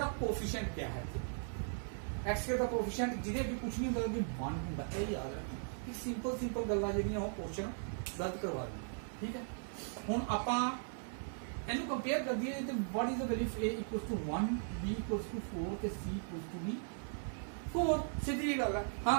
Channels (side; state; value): left; silent; 52 dB below the other